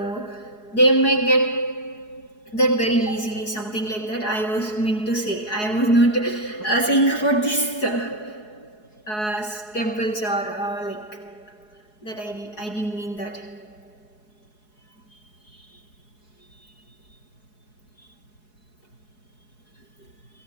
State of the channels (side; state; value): right; late; 4.7 ms